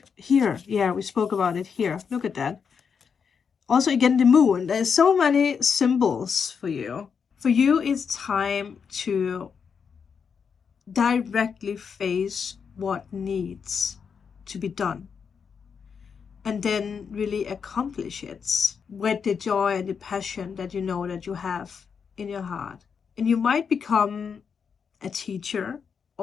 here. Yeah, we spoke about it here. Look at that. Also, again, the moon. There's so many symbols for you. For you, it's time to directly face what needs to be done, and then really accomplish it with the joy and the passion that you know that you have in your heart. And you might become a teacher,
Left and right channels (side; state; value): right; quieter; 6.4 dB